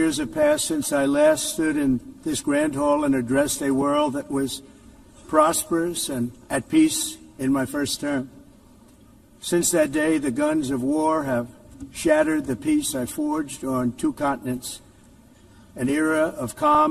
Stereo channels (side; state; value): both; identical; correlation 1.00